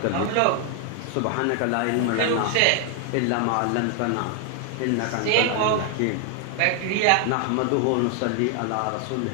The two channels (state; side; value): different; both; correlation 0.00